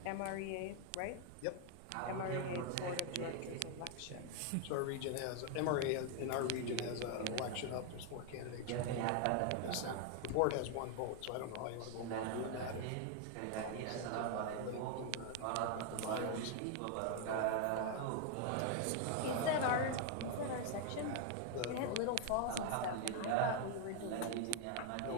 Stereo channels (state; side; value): different; both; correlation 0.01